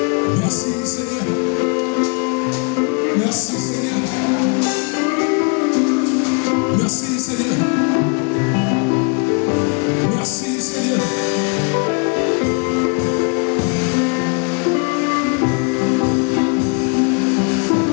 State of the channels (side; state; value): right; quieter; 34.9 dB